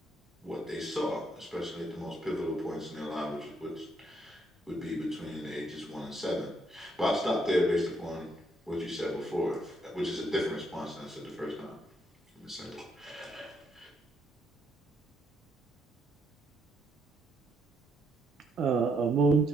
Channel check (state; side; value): normal; both; correlation 0.74